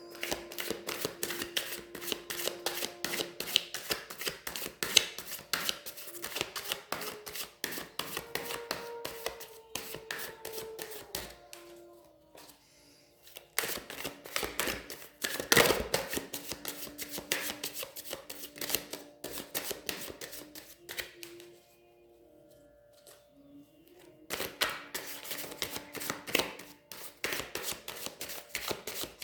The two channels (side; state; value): both; identical; correlation 1.00